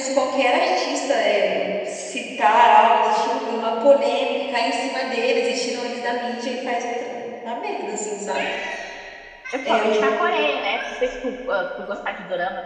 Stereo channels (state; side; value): identical; both; correlation 1.00